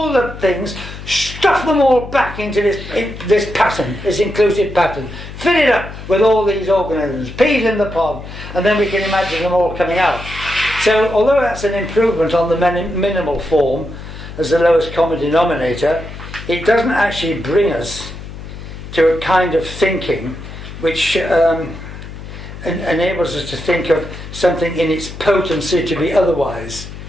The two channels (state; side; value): noise; left; hum, 12 dB below the sound